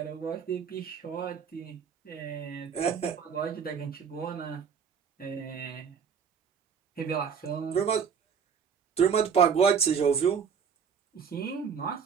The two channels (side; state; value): left; quieter; 6.8 dB